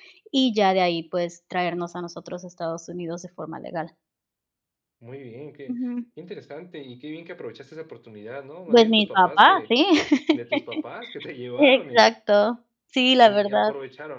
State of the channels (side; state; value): both; identical; correlation 1.00